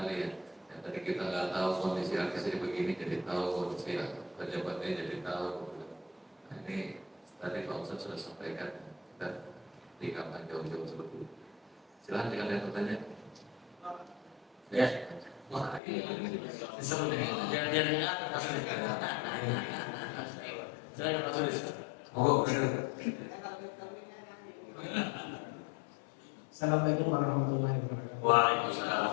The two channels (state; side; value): drops out; right; at 15.8 s